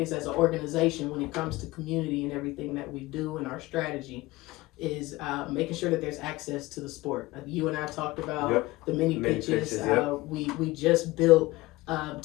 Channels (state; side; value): quieter; right; 19.9 dB